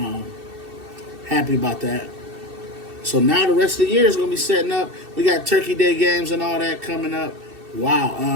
Happy about that. So now the rest of the year is going to be setting up. We got Turkey Day games and all that coming up.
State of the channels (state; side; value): late; left; 2.7 ms